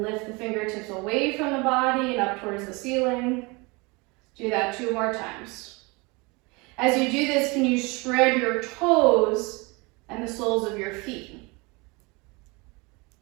lift the fingertips away from the body and up towards the ceiling. Do that 2 more times. As you do this, can you spread your toes and the soles of your feet?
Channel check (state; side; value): quieter; left; 26.9 dB